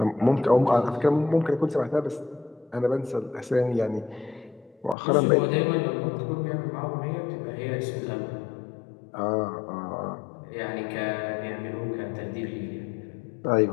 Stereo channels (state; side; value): drops out; right; at 5.0 s